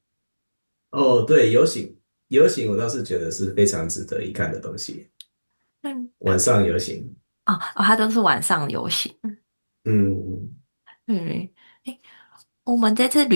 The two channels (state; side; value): inverted; both; correlation -1.00